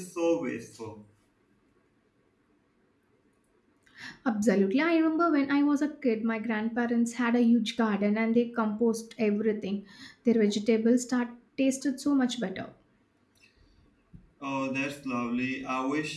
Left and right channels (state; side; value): identical; both; correlation 1.00